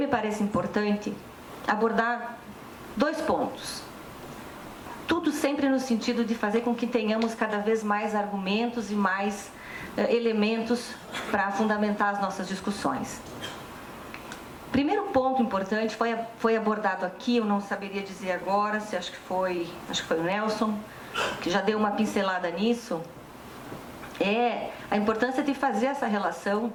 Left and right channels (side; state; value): both; identical; correlation 1.00